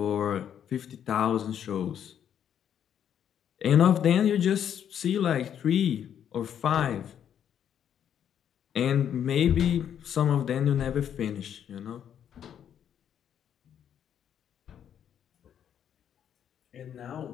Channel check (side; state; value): right; quieter; 9.2 dB